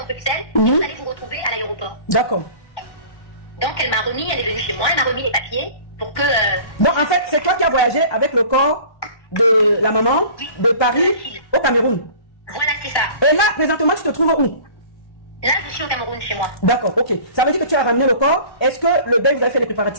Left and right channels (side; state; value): right; late; 1.2 ms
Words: Bruxelles et vous allez vous retrouver à l'aéroport. D'accord. Donc elle m'a remis, elle est venue chez moi, elle m'a remis les papiers pour que... Donc en fait, c'est toi qui as voyagé avec le corps de la maman de Paris au Cameroun. Voilà, c'est ça. Et là, présentement, tu te trouves où? Là, je suis au Cameroun chez moi. D'accord, ok. Ça veut dire que tu as ramené le corps. Est-ce que le deuil, vous avez fait les